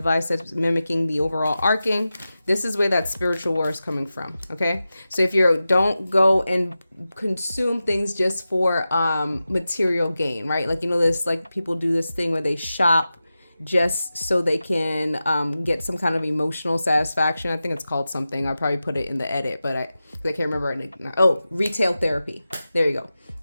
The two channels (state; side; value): inverted; both; correlation -0.93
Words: that's mimicking the overall arcing. This is where that spiritual war is coming from. Okay, so if you don't go and consume things just for material gain, right? Like, this, like, people do this thing where they shop just so they can get some kind of emotional satisfaction. I think it's called something. I'll probably put it in the edit, but I can't remember it. Oh, retail therapy. There you go.